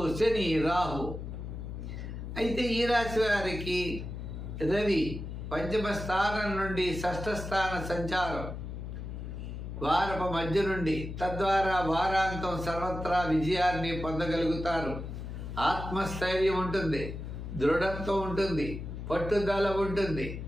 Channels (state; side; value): noise; left; hum, 7 dB below the sound